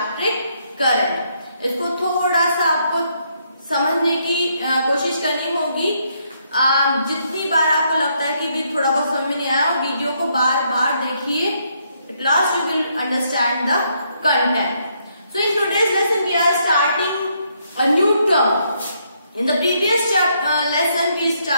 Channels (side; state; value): both; inverted; correlation -0.73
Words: current. इसको थोड़ा सा आपको समझने की कोशिश करनी होगी। जितनी बार आपको लगता है कि भी थोड़ा बहुत समझ में नहीं आया, वीडियो को बार बार देखिए। At last you will understand the content. So in today's lesson we are starting a new term. In the previous lesson we